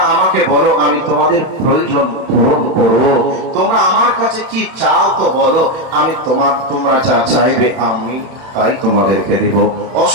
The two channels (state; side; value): late; left; 31 ms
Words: আমাকে বলো, আমি তোমাদের প্রয়োজন পূরণ করব। তোমরা আমার কাছে কি চাও তো বলো, আমি তোমরা যা চাইবে আমি তাই তোমাদেরকে দিব।